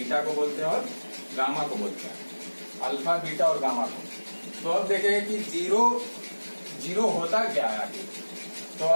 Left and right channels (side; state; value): both; inverted; correlation -1.00